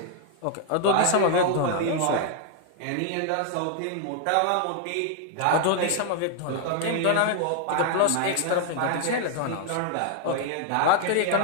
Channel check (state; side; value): different; both; correlation 0.00